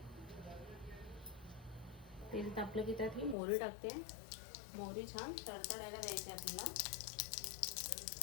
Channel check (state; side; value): drops out; right; at 3.4 s